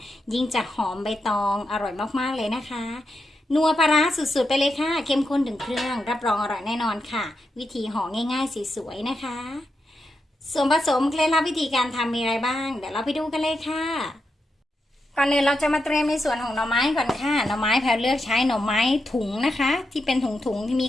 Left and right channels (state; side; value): normal; both; correlation 0.86